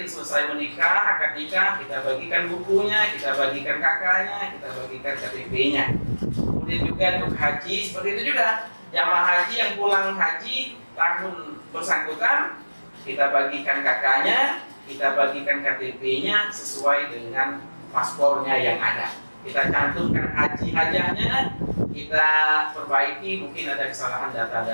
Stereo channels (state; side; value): inverted; both; correlation -1.00